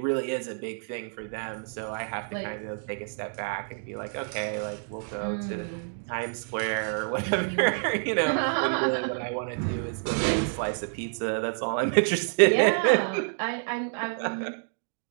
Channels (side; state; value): left; silent; 59 dB below the other